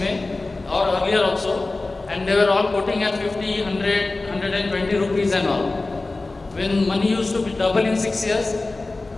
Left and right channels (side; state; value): right; quieter; 3.3 dB